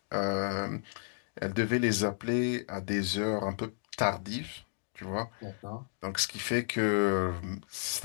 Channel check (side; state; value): right; silent; digital silence